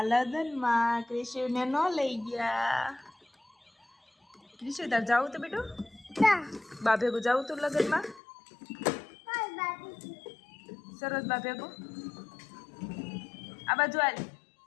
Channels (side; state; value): right; drops out; at 8.2 s